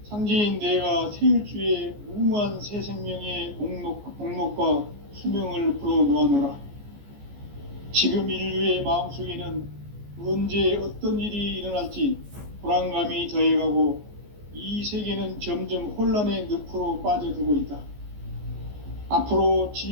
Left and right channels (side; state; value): left; late; 14 ms